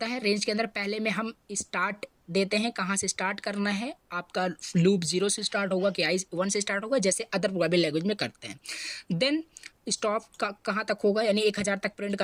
है। रेंज के अंदर पहले में हम स्टार्ट देते हैं, कहाँ से स्टार्ट करना है, आपका लूप 0 से स्टार्ट होगा कि 1 से स्टार्ट होगा, जैसे अदर प्रोग्रामिंग लैंग्वेज में करते हैं। देन स्टॉप कहाँ तक होगा, यानी 1000 तक प्रिंट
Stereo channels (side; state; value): both; identical; correlation 1.00